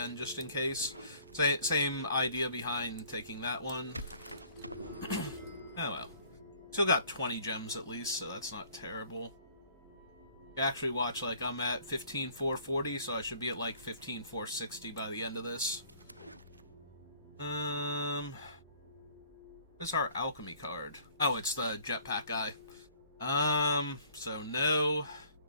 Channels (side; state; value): both; inverted; correlation -0.56